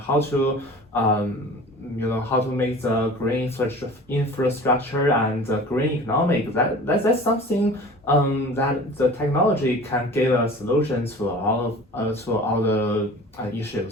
to how to make the green infrastructure and the green economic. That's something that the technology can give us solutions to all the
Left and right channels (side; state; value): both; normal; correlation 0.42